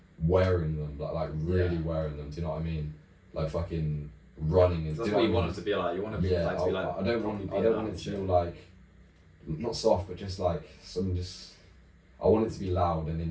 wearing them, like really wearing them, do you know what I mean? Like fucking running and that's what you want it to be like. You want to be like to be like. I don't want it to feel like not soft, but just like I want it to be loud and in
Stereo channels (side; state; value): both; identical; correlation 1.00